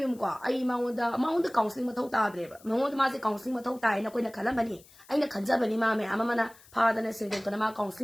ိုက်မြုံကွာအဲ့မောင်တကောင်စလင်းမထုတ်တာတဲ့မောင်တမစီကောင်စလင်းမထုတ်တာရင်ကိုယ်နဲ့ခလမနီအဲ့နဲ့ခန်ကြပနီမမဲအမမနာဖာတဲ့စင်တဲ့ကနမကောင်စလ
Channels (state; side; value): noise; left; hiss, 25 dB below the sound